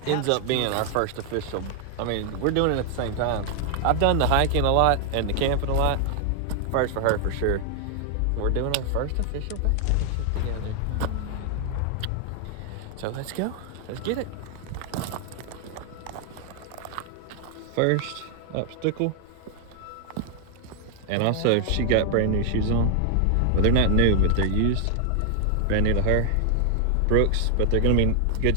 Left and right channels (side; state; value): both; different; correlation 0.00